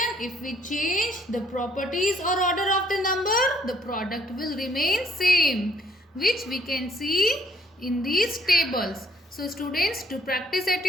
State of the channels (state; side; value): normal; both; correlation 0.65